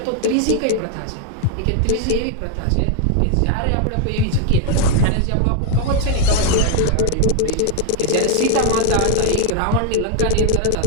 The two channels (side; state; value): both; different; correlation 0.00